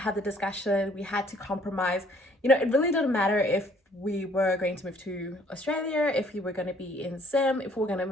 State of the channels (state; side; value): normal; both; correlation 0.60